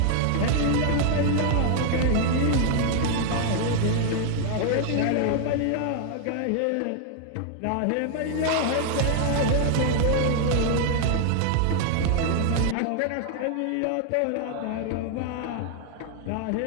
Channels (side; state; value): both; different; correlation 0.00